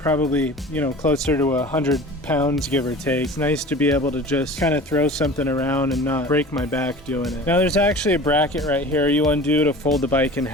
you know, closer to 100 pounds, give or take. It's nice to be able to just kind of throw something around and not break my back doing it. Now there's actually a bracket right here you undo to fold the bike in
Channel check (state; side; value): normal; both; correlation 0.39